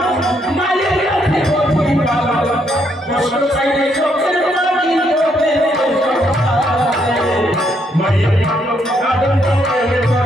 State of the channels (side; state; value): both; normal; correlation 0.74